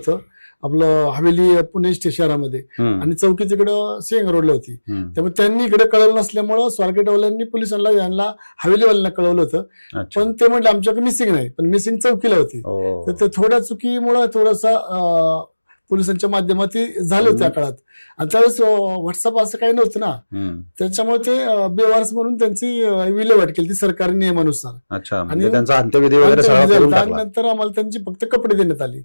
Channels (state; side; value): inverted; both; correlation -1.00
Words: आपलं हवेली पुणे शहरामध्ये, आणि चौकी तिकडं सिंग रोडला होती. त्यामुळे त्यांनी इकडे कळवलं नसल्यामुळं स्वारगेटवाल्यांनी पोलिसांना यांना हवेलीवाल्यांना कळवलं होतं. पण ते म्हटलं आमच्याकडे मिसिंग नाही, पण मिसिंग चौकीला होती. तर ते थोड्या चुकीमुळे थोडासा पोलिसांच्या माध्यमातून झालं त्या काळात. आणि त्यावेळेस व्हॉट्सअप असं काही नव्हतं ना, त्याच्यामुळे ते बेवारस म्हणून त्यांची विल्हेवाट केली ती सरकारी नियमानुसार. आणि अंत्यविधी आणि नंतर आम्हाला त्यांची फक्त कपडे देण्यात आले.